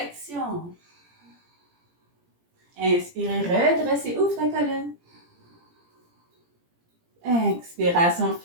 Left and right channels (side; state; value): left; late; 17 ms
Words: Inspirez, redressez, ouvre ta colonne. Expiration,